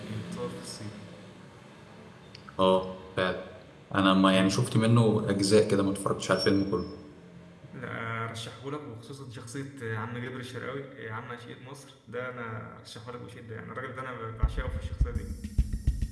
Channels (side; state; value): both; identical; correlation 1.00